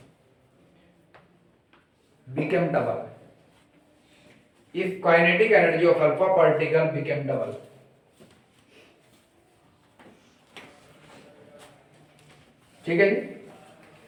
became double. If kinetic energy of alpha particle became double. ठीक है जी.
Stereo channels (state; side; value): identical; both; correlation 1.00